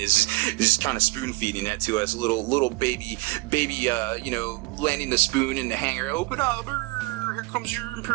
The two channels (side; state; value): left; quieter; 24.4 dB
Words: just kind of spoon feeding it to us, little baby, you know, landing the spoon in the hangar. Open up, here comes your